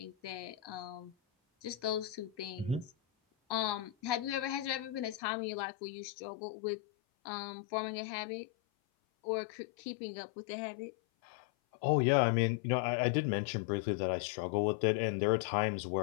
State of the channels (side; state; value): right; drops out; at 5.2 s